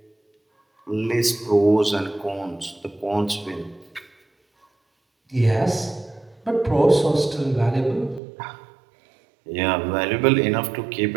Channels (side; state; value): left; drops out; at 8.2 s